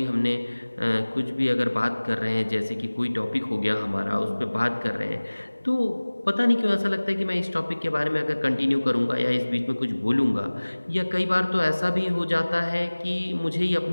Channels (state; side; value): inverted; both; correlation -1.00